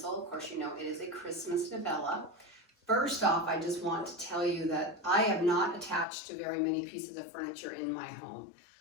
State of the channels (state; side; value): drops out; right; at 6.1 s